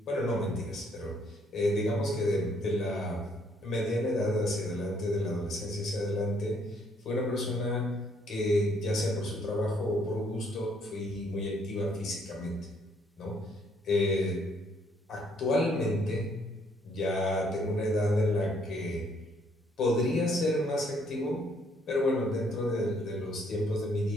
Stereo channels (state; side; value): normal; both; correlation 0.67